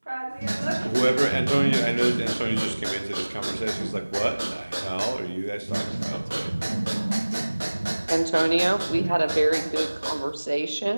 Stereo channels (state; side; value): inverted; both; correlation -1.00